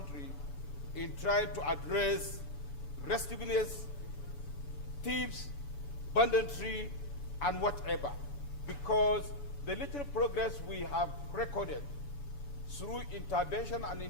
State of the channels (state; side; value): late; right; 7.0 ms